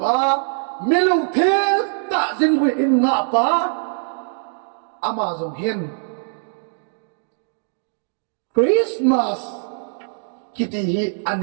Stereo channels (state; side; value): silent; left; digital silence